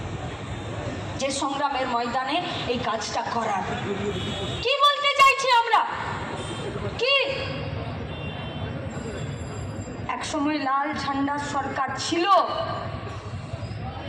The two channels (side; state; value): both; identical; correlation 1.00